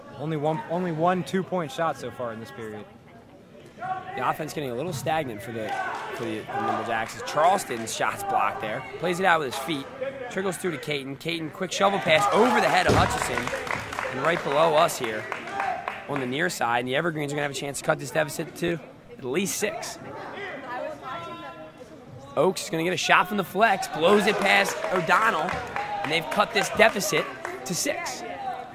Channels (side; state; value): both; identical; correlation 1.00